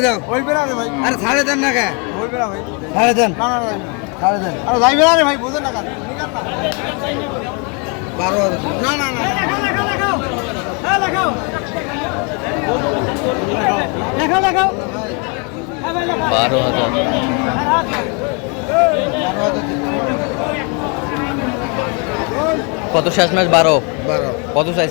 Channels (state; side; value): quieter; right; 34.3 dB